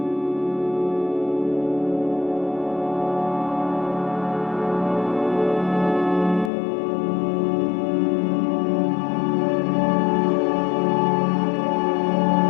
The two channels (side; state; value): right; drops out; at 6.5 s